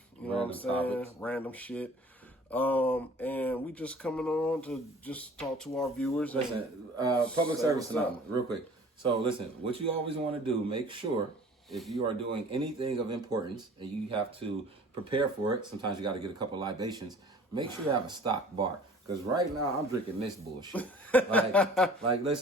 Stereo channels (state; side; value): normal; both; correlation 0.48